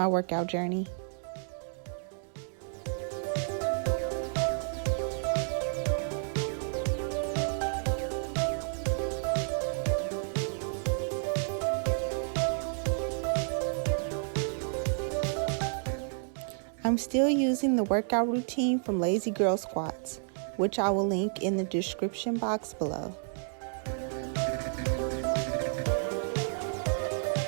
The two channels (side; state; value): left; silent; digital silence